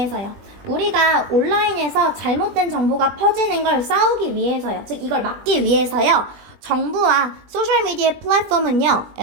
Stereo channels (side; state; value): left; late; 20 ms